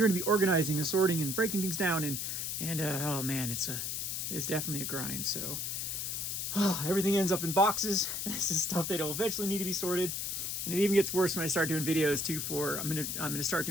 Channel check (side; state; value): left; noise; hiss, 2 dB below the sound